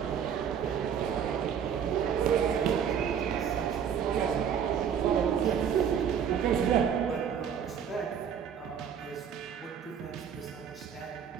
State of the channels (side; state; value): left; quieter; 8.0 dB